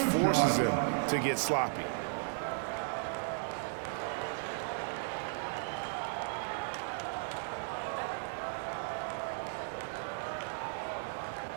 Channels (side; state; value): left; silent; digital silence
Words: him to get sloppy.